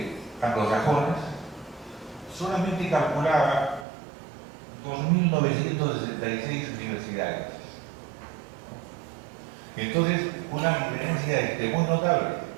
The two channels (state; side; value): drops out; left; at 3.9 s